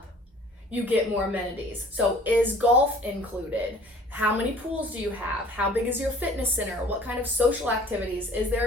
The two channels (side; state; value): both; normal; correlation 0.51